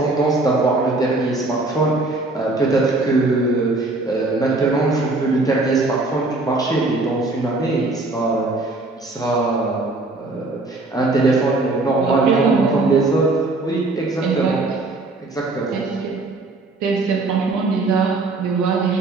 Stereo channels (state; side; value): quieter; left; 3.2 dB